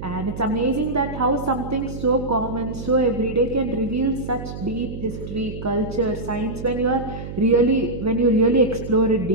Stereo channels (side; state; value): right; noise; hum, 9 dB below the sound